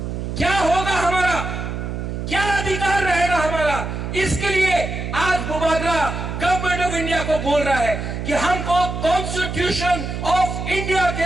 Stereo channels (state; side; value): noise; right; hum, 5 dB below the sound